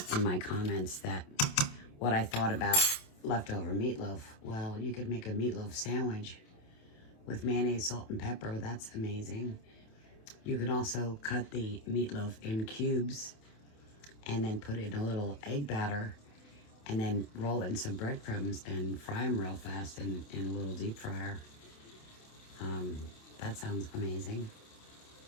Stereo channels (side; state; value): right; late; 27 ms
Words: my comments what I thought about leftover meatloaf. Well, you could make a meatloaf sandwich with mayonnaise, salt, and pepper. That's amazing. You could also cut the meatloaf in cubes and then put it in a little egg batter, and then roll it in some breadcrumbs and fry them real fast in a little deep fryer. That sounds amazing.